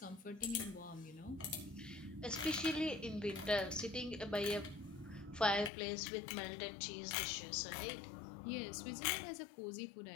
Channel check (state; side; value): drops out; right; at 5.7 s